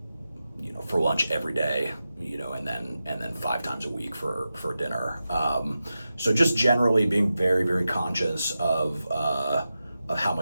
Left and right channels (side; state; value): both; inverted; correlation -0.92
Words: for lunch every day, and then 5 times a week for dinner. So just generally being very, very conscious of how